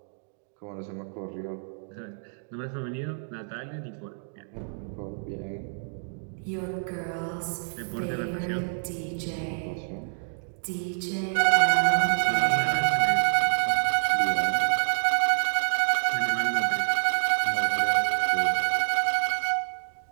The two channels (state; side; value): silent; left; 60 dB below the other